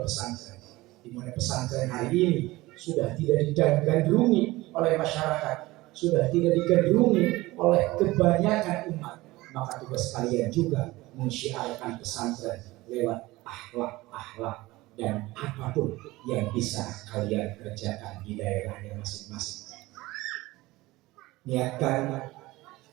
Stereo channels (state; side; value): quieter; left; 19.5 dB